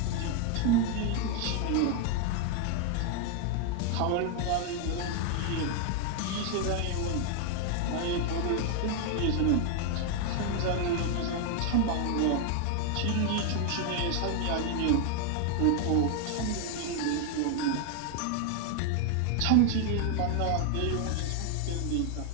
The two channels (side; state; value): both; different; correlation 0.01